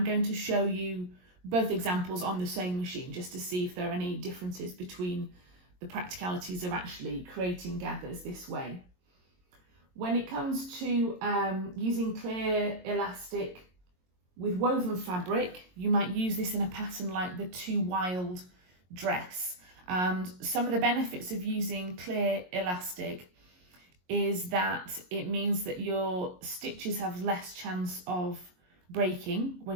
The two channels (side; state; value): left; late; 22 ms